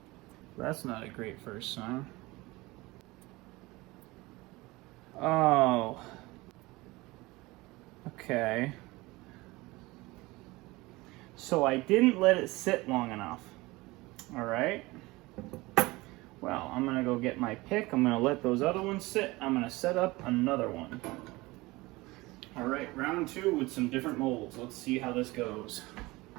That's not a great first sign. Oh. Okay. So I didn't let it sit long enough. Alright. Well, I'm going to go get my pick. I'm going to let those other ones sit. I'm going to set up another one. Alright, round 2 with some different molds. Let's see how this goes.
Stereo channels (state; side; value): quieter; left; 21.5 dB